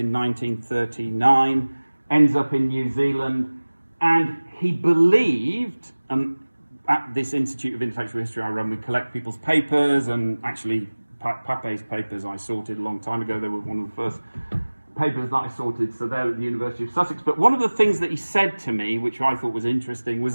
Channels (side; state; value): both; inverted; correlation -1.00